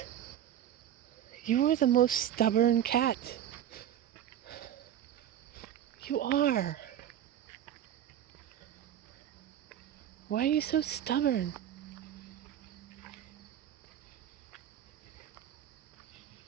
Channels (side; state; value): left; quieter; 10.7 dB